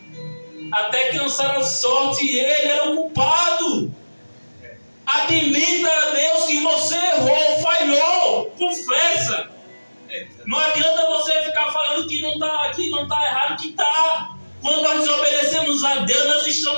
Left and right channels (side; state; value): both; inverted; correlation -1.00